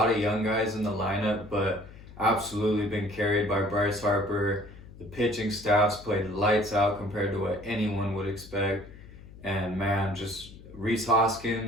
of young guys in the lineup, but absolutely been carried by Bryce Harper. The pitching staff's played lights out compared to what anyone would expect. And man, just Rhys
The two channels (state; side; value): noise; left; hum, 18 dB below the sound